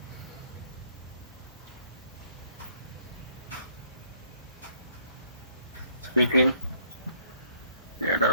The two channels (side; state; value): both; inverted; correlation -0.62